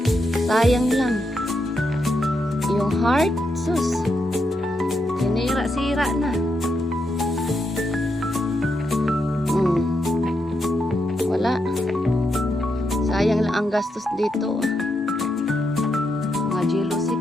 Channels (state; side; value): normal; both; correlation 0.82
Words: Sayang lang. Yung heart, sus. Sinira-sira na. Wala. Sayang lang ang gastos dito. Mga jealousy,